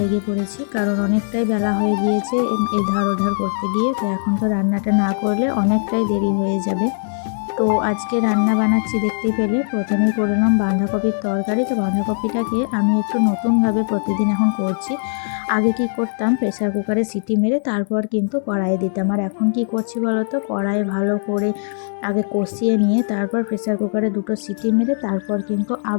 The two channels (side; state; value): right; silent; digital silence